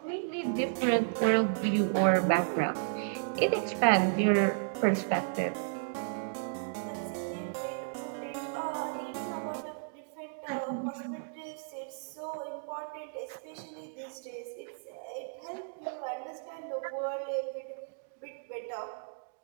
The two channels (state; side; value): silent; left; digital silence